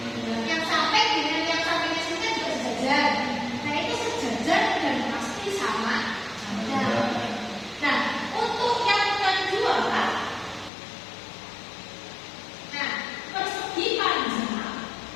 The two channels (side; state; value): right; drops out; at 10.7 s